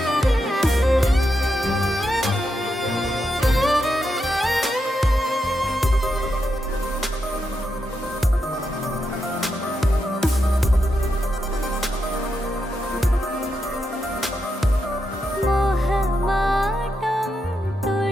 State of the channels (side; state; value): both; normal; correlation 0.85